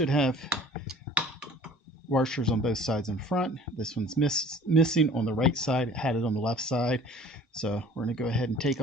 have washers on both sides in front. This one's missing on the right side. It had it on the left side. So we're going to go ahead and take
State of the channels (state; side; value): normal; both; correlation 0.49